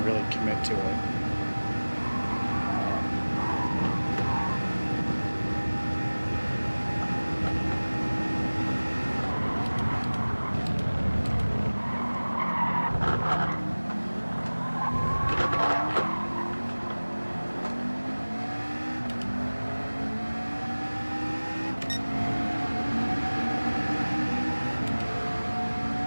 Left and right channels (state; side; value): inverted; both; correlation -1.00